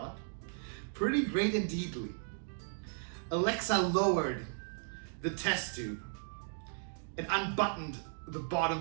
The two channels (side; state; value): left; silent; digital silence